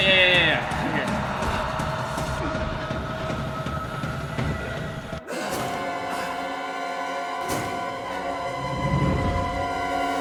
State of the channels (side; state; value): both; identical; correlation 1.00